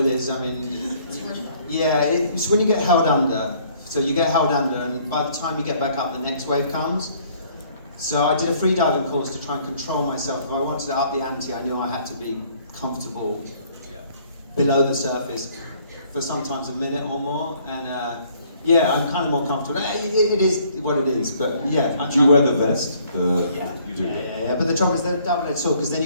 is. I mean, yeah, it's when you get held under. So you get held under, and by the time you get back up, the next wave comes. So I did a free diving course to try and control myself. If I wanted to up the ante, I knew I had to be comfortable below the surface for sometimes a minute or more. And yeah, I'm kind of more comfortable. It is what it is, but yeah. Do you wear the vest? Yeah. You do. Yeah. But the trouble is they're double-edged sword because then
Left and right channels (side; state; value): both; inverted; correlation -0.61